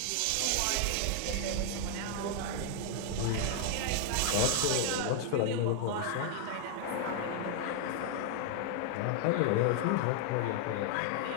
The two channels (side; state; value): both; different; correlation 0.00